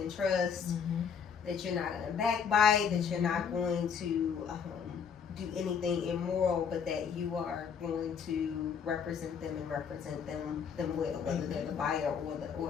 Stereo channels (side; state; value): right; quieter; 6.8 dB